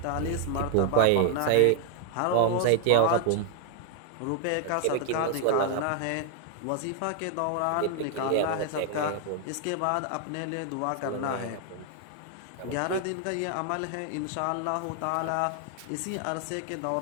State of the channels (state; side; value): different; both; correlation 0.00